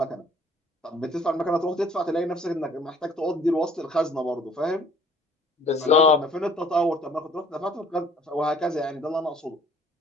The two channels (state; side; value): normal; both; correlation 0.55